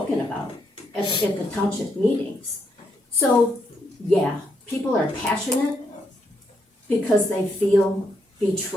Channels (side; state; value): both; normal; correlation 0.78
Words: about at the township meetings. So, yeah, people are passionate because they feel